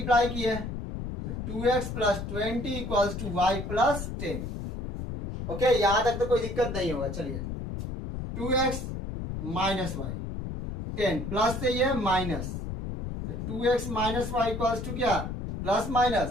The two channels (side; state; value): left; noise; rumble, 6 dB below the sound